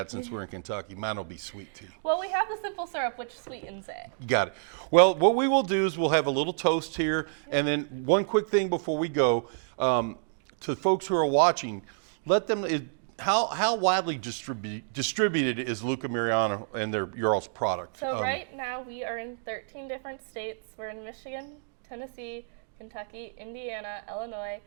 since we're in Kentucky. Mine will be sweet tea. Well, we have the simple syrup, which sweetens it. You got it. Well, what we will do is we'll have a little toast here, and then one quick thing before we go to folks who are watching, let them. How widely distributed is Luca Mariano and your all's product? So right now we are in 13 different states. We're in Michigan, Tennessee, Kentucky, Indiana, Illinois,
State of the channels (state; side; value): silent; left; digital silence